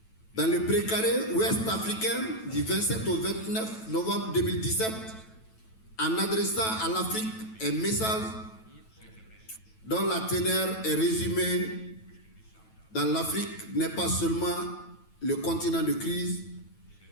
dans le précaré ouest africain du 27 au 29 novembre 2017 en adressant à l'Afrique un message dont la teneur est résumée dans l'Afrique n'est pas seulement le continent de crise,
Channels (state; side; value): late; right; 9.1 ms